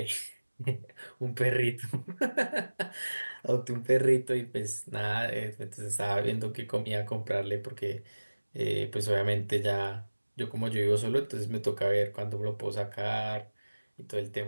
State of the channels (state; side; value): inverted; both; correlation -1.00